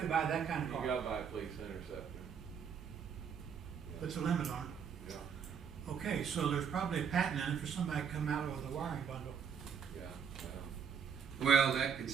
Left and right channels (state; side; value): quieter; left; 7.1 dB